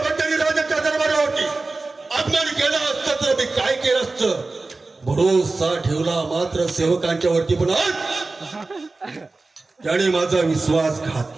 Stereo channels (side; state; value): left; quieter; 3.5 dB